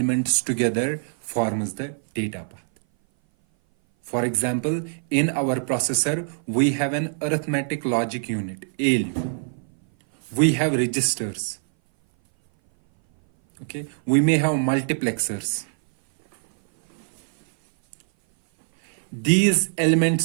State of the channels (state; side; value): silent; left; 58 dB below the other